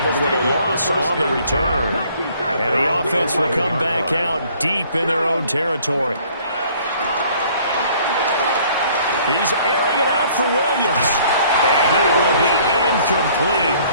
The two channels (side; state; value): both; inverted; correlation -0.57